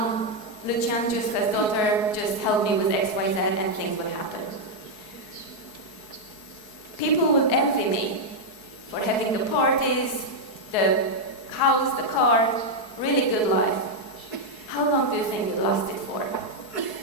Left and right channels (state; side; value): late; right; 4.7 ms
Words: Giusca's daughter, just help me with X, Y, Z, and things would happen. People would envy me for having the parties, the house, the car, really good life. How long do you think it lasted for?